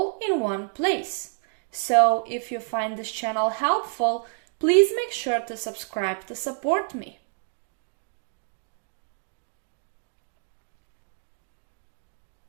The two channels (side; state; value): left; silent; digital silence